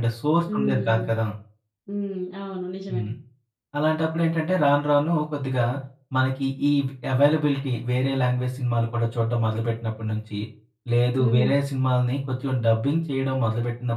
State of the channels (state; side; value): identical; both; correlation 1.00